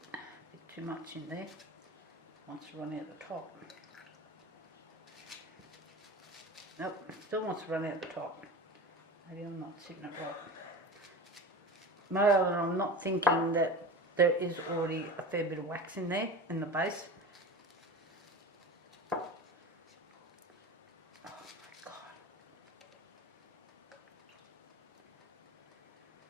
bit too much in there. Wants to run out the top. Nope, still wants to run out the top. Maybe I'm not sitting it right. Moreover, I'm not thinking that there is already a fair bit of wax in there, in the base. Oh my God.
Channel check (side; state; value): both; normal; correlation 0.31